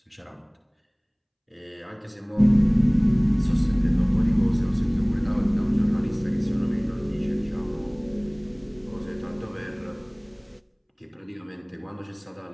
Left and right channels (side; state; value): both; identical; correlation 1.00